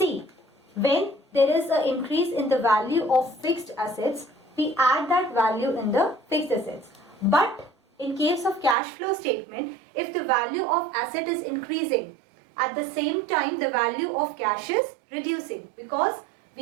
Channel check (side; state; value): left; drops out; at 8.8 s